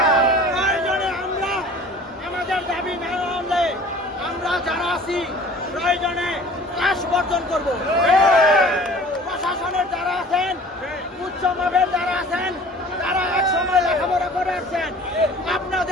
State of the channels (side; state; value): both; normal; correlation 0.47